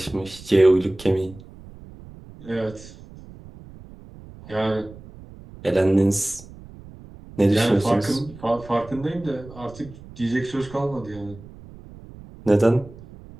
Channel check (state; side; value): noise; right; rumble, 19 dB below the sound